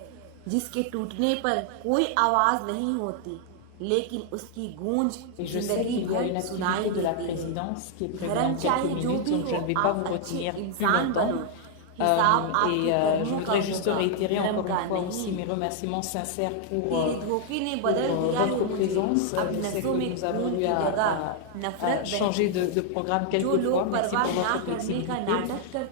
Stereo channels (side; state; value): both; different; correlation 0.00